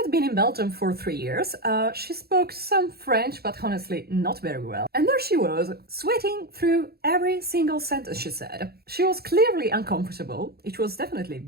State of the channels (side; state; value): left; late; 0.46 ms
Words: been in Belgium for 3 years. She spoke some French, but honestly not very well. And there she was, sweating through every single sentence she said. She was clearly uncomfortable. It was definitely